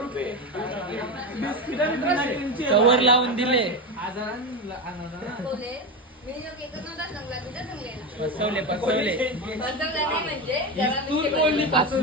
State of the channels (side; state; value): both; normal; correlation 0.17